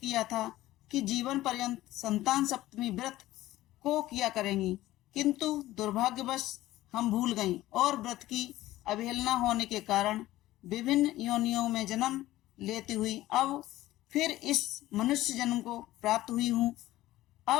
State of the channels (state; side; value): quieter; right; 15.9 dB